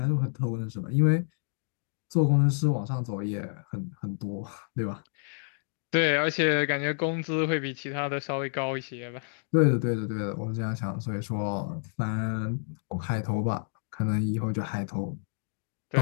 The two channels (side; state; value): right; silent; digital silence